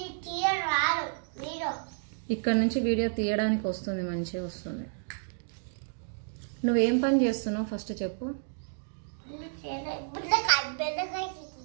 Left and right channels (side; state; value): left; silent; digital silence